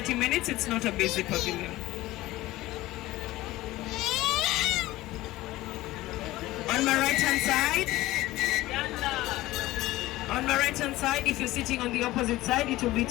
minutes. It's not a basic pavilion. On my right hand side, if you're sitting on the opposite side, it will be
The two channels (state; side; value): quieter; right; 17.4 dB